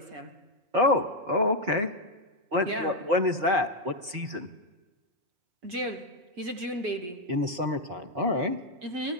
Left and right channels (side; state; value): left; late; 4.8 ms